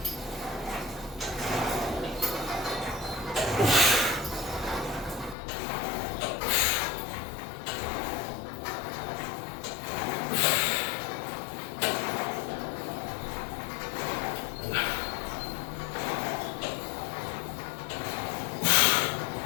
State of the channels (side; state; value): right; drops out; at 5.4 s